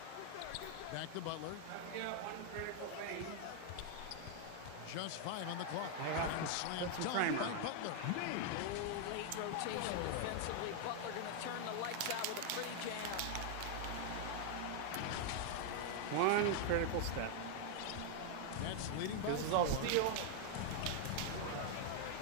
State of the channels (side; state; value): both; different; correlation 0.00